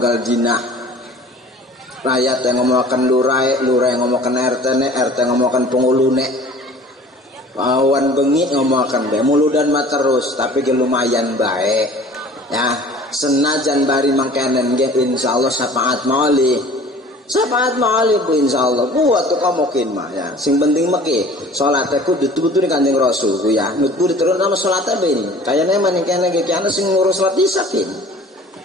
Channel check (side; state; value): both; normal; correlation 0.47